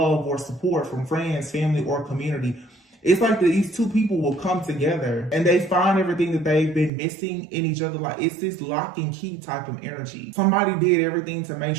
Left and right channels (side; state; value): left; drops out; at 6.9 s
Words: or support from friends, family, or community. It's like these two people will come together and they find everything that they've been missing in each other. Like it's this lock and key type of energy. Somebody did everything to make